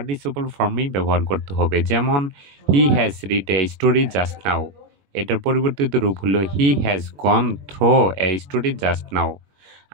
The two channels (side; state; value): left; late; 21 ms